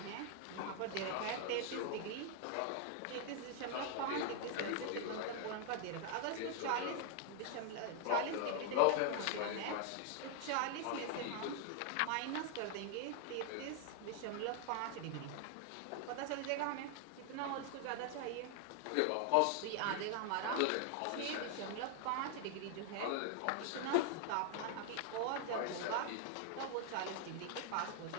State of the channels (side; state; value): both; different; correlation 0.00